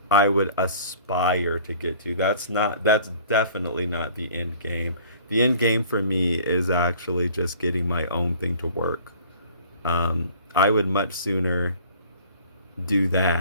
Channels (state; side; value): inverted; both; correlation -0.50